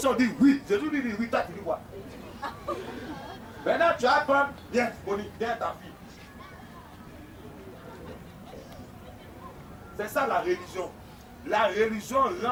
on dit oui. Jésus lui dit oui. Toi tu dis quoi? Maintenant tu vas prendre. Viens, Bonnie, viens ta fille. C'est ça la religion. La religion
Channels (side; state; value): both; identical; correlation 1.00